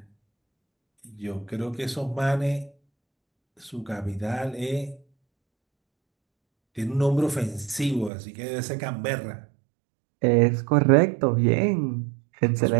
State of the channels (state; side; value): drops out; left; at 8.1 s